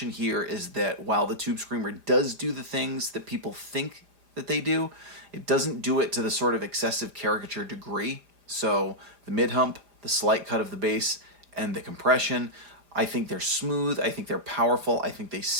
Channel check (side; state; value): left; late; 4.9 ms